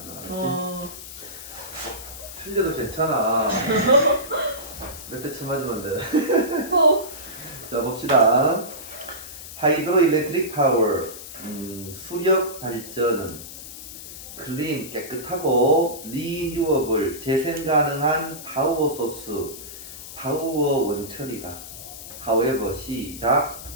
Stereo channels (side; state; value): left; noise; hiss, 12 dB below the sound